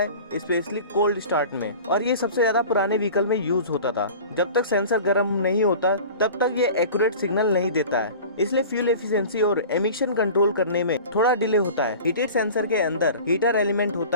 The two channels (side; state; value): both; inverted; correlation -0.40